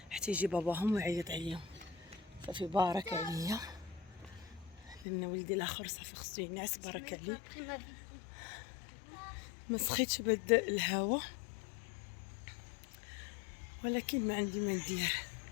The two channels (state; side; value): drops out; right; at 5.1 s